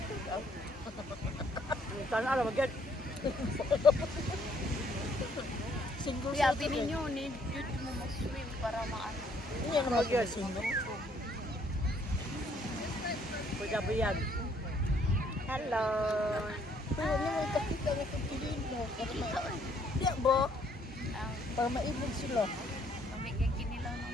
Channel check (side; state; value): both; normal; correlation 0.66